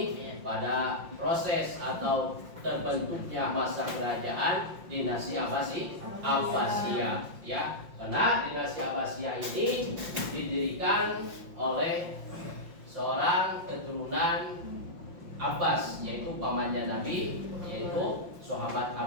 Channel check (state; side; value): late; left; 5.7 ms